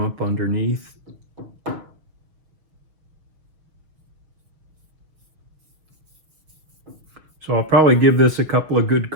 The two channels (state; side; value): late; left; 6.3 ms